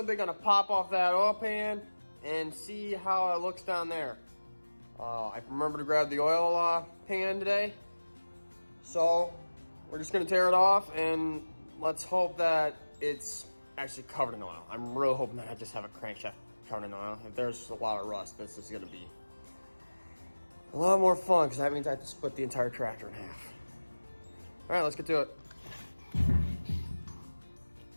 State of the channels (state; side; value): inverted; both; correlation -1.00